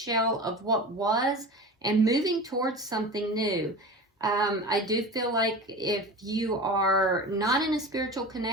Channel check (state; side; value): normal; both; correlation 0.32